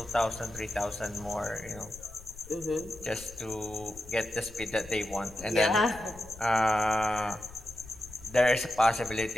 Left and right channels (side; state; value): left; noise; rumble, 18 dB below the sound